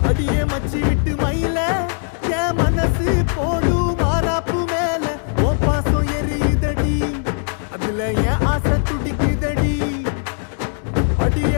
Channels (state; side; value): silent; right; digital silence